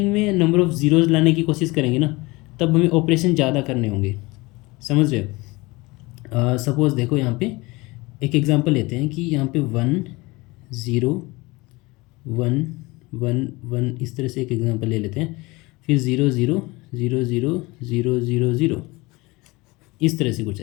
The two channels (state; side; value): quieter; right; 23.1 dB